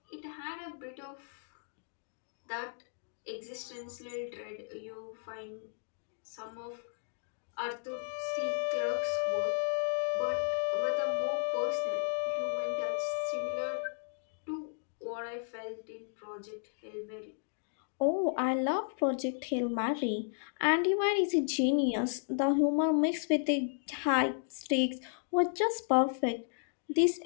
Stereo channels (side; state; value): right; silent; digital silence